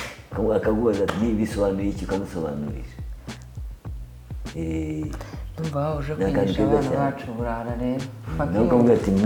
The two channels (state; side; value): identical; both; correlation 1.00